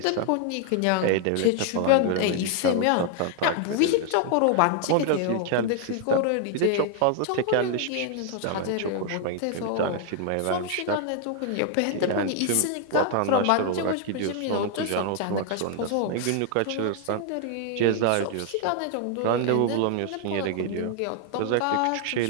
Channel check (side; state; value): both; different; correlation 0.00